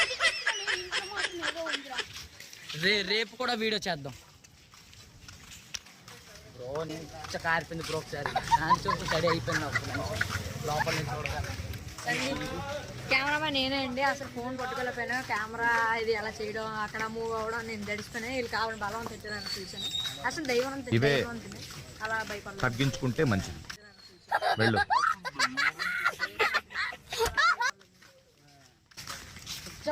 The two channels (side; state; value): both; identical; correlation 1.00